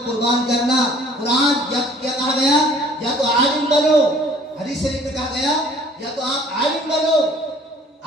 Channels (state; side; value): normal; both; correlation 0.54